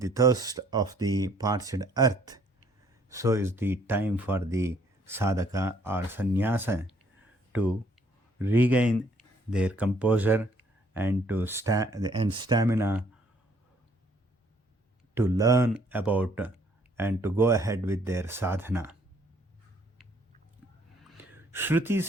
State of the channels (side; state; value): both; normal; correlation 0.64